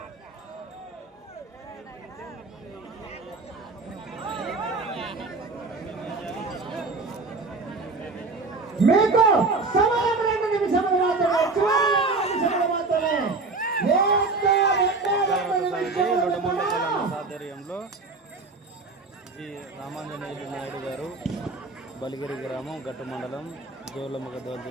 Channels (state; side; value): quieter; left; 3.7 dB